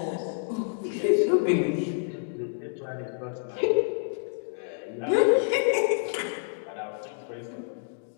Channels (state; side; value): silent; right; digital silence